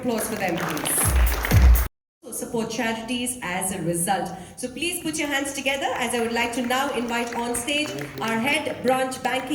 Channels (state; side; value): identical; both; correlation 1.00